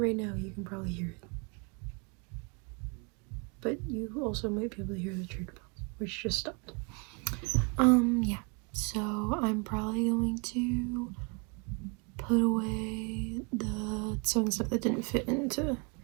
now, you can probably hear it. But you also might be able to hear the church bells, which just stopped. Yeah. So I'm probably going to put away the sewing stuff that didn't fit into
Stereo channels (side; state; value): left; quieter; 32.9 dB